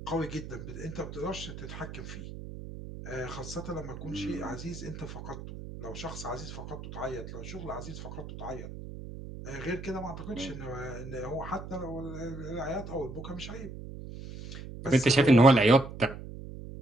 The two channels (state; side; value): noise; right; hum, 11 dB below the sound